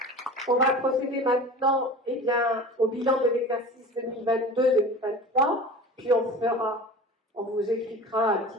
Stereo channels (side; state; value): both; normal; correlation 0.36